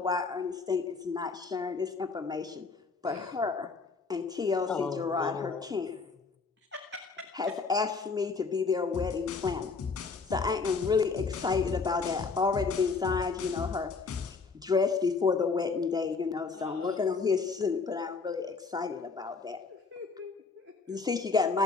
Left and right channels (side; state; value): right; quieter; 4.6 dB